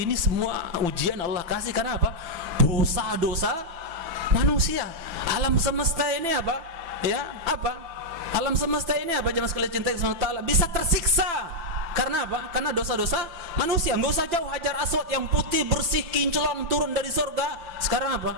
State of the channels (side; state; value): left; late; 5.9 ms